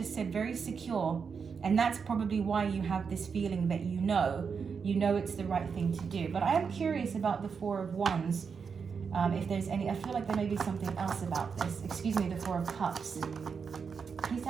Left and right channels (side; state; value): left; quieter; 6.0 dB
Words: said very secure, and that's probably why you have this feeling that you know it's the right thing to do. But I am curious about the 4 of Wands. If there's any, I feel like there may be something else about this. Excuse me, the 4 of Cups. Please